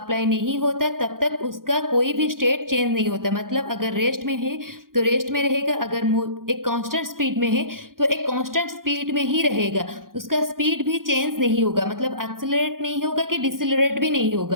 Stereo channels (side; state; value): left; late; 0.91 ms